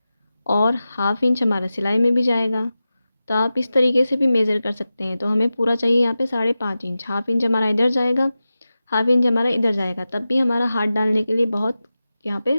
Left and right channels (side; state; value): both; inverted; correlation -0.94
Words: और हाफ इंच हमारा सिलाई में भी जाएगा। तो आप इस तरीके से भी मेज़र कर सकते हैं। तो हमें पूरा चाहिए यहाँ पे 5.5 इंच। हाफ इंच हमारा इधर जाएगा, हाफ इंच हमारा इधर जाएगा, तब भी हमारा हाथ डालने के लिए बहुत यहाँ